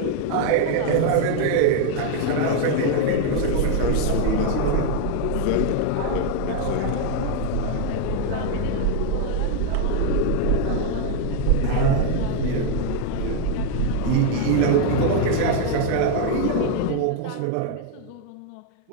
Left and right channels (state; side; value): different; both; correlation 0.01